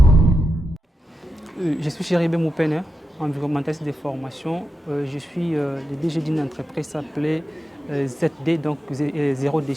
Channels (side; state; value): both; normal; correlation 0.88